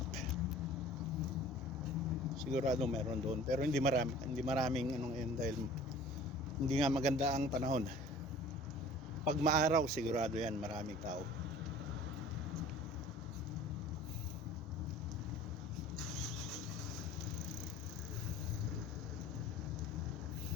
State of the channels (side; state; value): both; normal; correlation 0.46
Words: Sigurado meron doon, pero hindi maraming ngayon dahil hindi nga maganda ang panahon. Pag maaraw sigurado yan maraming tao.